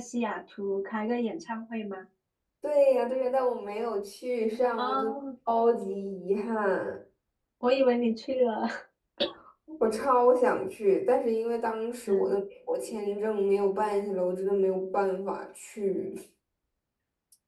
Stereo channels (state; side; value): identical; both; correlation 1.00